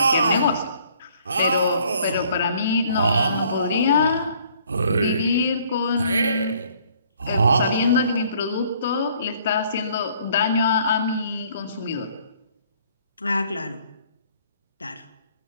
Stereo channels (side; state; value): both; inverted; correlation -0.61